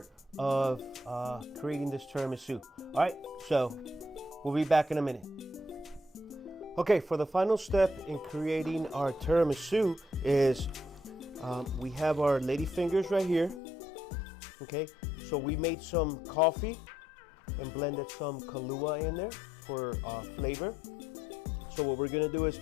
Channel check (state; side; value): drops out; right; at 13.6 s